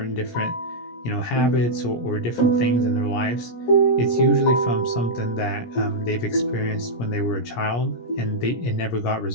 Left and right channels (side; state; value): right; late; 17 ms